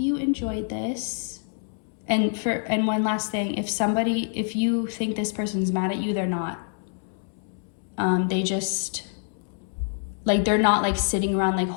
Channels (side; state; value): right; silent; 61 dB below the other